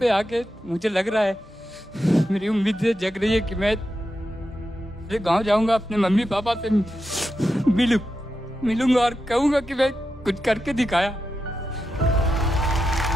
आके मुझे लग रहा है, मेरी उम्मीदें जग रही है कि मैं गांव जाऊंगा, अपने मम्मी पापा से मिलूंगा और कहूंगा कि मैं कुछ करके दिखाया।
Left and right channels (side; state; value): both; normal; correlation 0.88